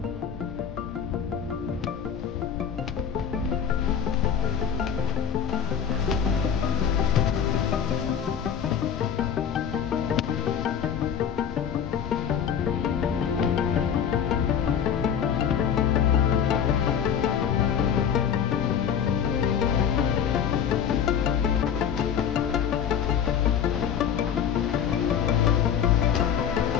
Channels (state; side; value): quieter; right; 8.1 dB